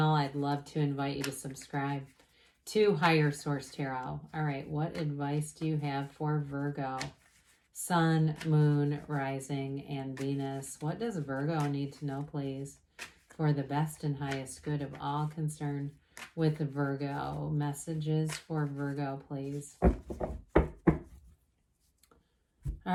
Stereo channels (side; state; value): both; identical; correlation 1.00